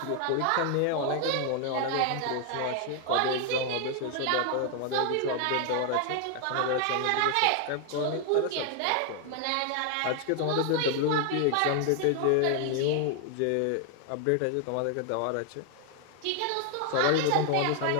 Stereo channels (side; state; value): both; different; correlation 0.00